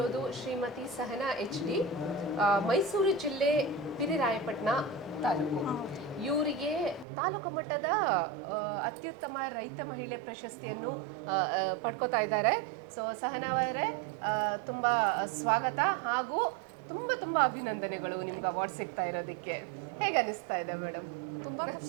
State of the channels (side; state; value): left; drops out; at 7.1 s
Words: ಶ್ರೀಮತಿ ಸಹನಾ HD, ಮೈಸೂರು ಜಿಲ್ಲೆ ಪಿರಿರಾಯಪಟ್ಟಣ ತಾಲೂಕು. ಇವರಿಗೆ ತಾಲೂಕು ಮಟ್ಟದ ಅತ್ಯುತ್ತಮ ರೈತ ಮಹಿಳೆ ಪ್ರಶಸ್ತಿಯನ್ನು ಪಡ್ಕೋತಾ ಇದ್ದಾರೆ. ಸೊ ಸಹನಾ ಅವರೇ, ತುಂಬ ಸ್ವಾಗತ ಹಾಗೂ ತುಂಬ ತುಂಬ ಅಭಿನಂದನೆಗಳು ನಿಮ್ಗೆ ಅವಾರ್ಡ್ ಸಿಗ್ತಾ ಇರೋದಕ್ಕೆ. ಹೇಗೆ ಅನಿಸ್ತಾ ಇದೆ ಮೇಡಮ್? ತುಂಬ